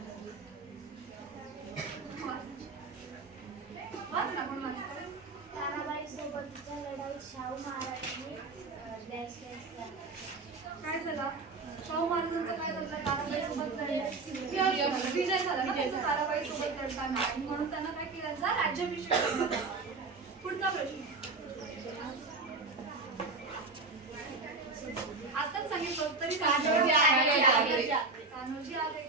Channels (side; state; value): left; quieter; 3.8 dB